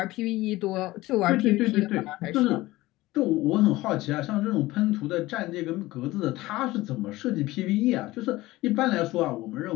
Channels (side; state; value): right; quieter; 18.4 dB